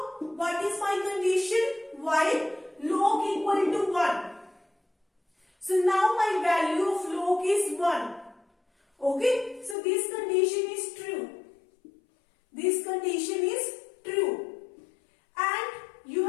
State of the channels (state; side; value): drops out; right; at 9.8 s